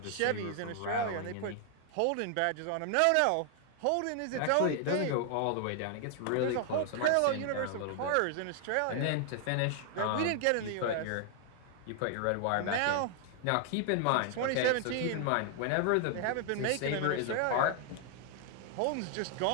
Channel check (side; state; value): both; different; correlation 0.00